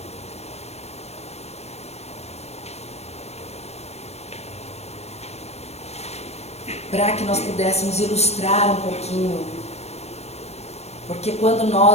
Para que nós pudéssemos ilustrar um pouquinho Porque quando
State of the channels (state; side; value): late; right; 0.31 ms